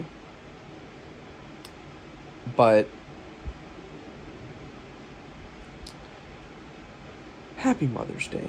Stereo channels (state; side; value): identical; both; correlation 1.00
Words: But Happy Mother's